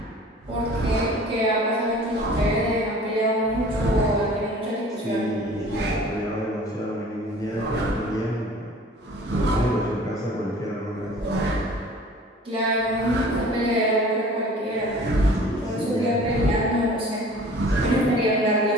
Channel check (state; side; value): normal; both; correlation 0.47